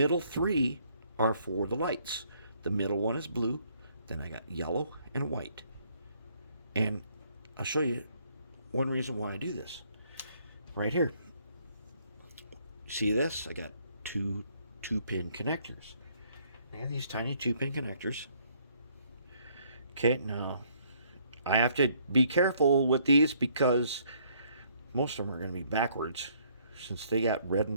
three are for the lights. The middle one is blue, then I got yellow and white. And I'll show you one reason why I do this. Right here. See this? I got two 2-pin connectors. I got these tiny 2-pin connectors. Okay, now I have to be careful with these because most of them are going to be backwards since they got red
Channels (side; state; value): both; inverted; correlation -0.66